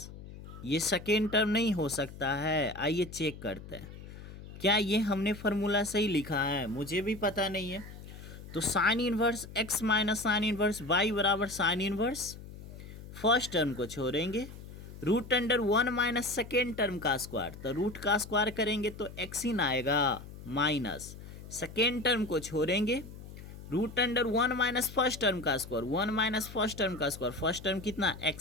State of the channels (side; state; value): left; noise; hum, 14 dB below the sound